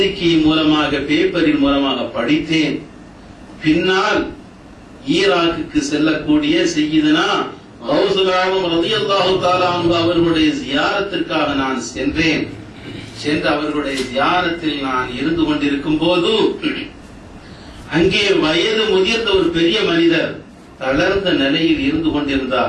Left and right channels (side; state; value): both; identical; correlation 1.00